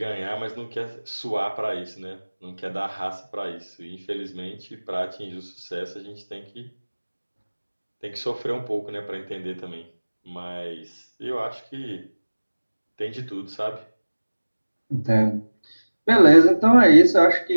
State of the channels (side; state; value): both; inverted; correlation -1.00